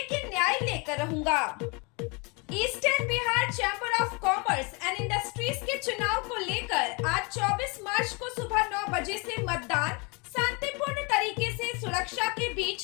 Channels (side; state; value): right; quieter; 30.3 dB